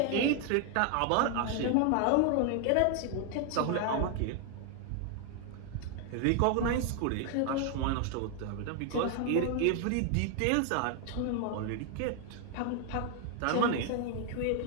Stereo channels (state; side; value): different; both; correlation 0.00